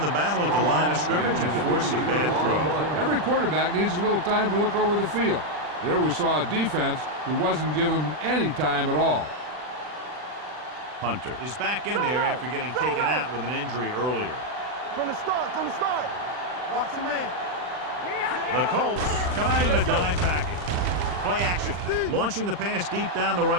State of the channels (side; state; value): left; late; 40 ms